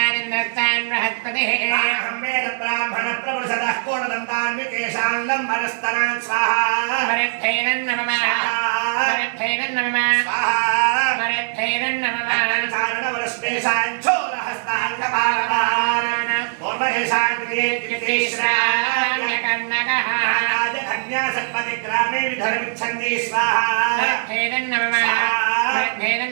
బృహస్పతిః అహం వేద బ్రాహ్మణ ప్రవృషదః కోణదంతాన్ వికేశాన్ లంబరస్తనాన్ స్వాహా మరుద్ధైదం నమః మరుద్ధైదం నమః స్వాహా మరుద్ధైదం నమః చారణవరస్పేశాన్ చోరహస్తాన్ కపాలపాన్ పూర్వహే श्राव्यकर्णकः कन्यासत्पतिग्रामे विधर्मिच्छन्ति स्वाहा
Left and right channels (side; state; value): left; silent; digital silence